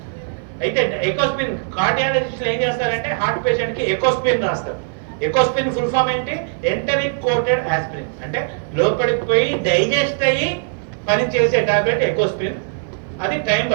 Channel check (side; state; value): left; silent; 56 dB below the other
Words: అయితే ఎకోస్ప్రిన్ కార్డియాలజిస్టులు ఏం చేస్తారంటే హార్ట్ పేషెంట్ కి ఎకోస్ప్రిన్ రాస్తారు. ఎకోస్ప్రిన్ ఫుల్ ఫామ్ ఏంటి? Enteric coated aspirin. అంటే లోపలికి పోయి డైజెస్ట్ అయ్యి పని చేసే టాబ్లెట్ ఎకోస్ప్రిన్. అది టైం